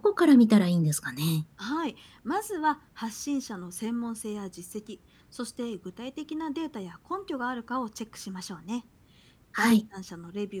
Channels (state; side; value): identical; both; correlation 1.00